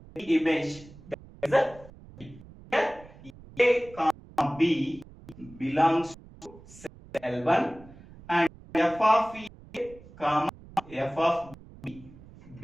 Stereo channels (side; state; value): right; noise; rumble, 20 dB below the sound